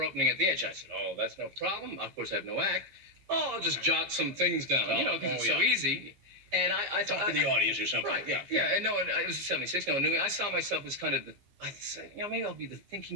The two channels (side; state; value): left; late; 15 ms